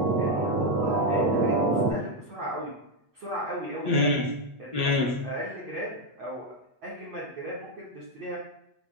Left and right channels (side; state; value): left; late; 8.2 ms